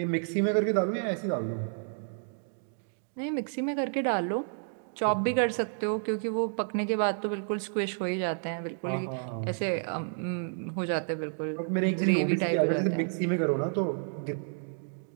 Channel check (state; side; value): silent; left; digital silence